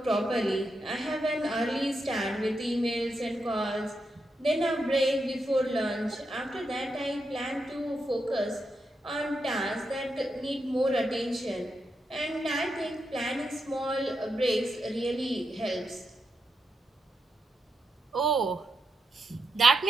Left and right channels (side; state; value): both; normal; correlation 0.85